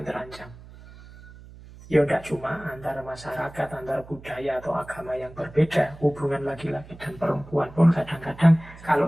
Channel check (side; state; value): right; noise; hum, 19 dB below the sound